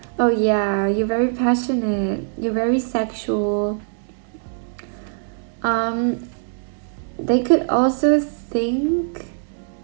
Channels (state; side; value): silent; left; digital silence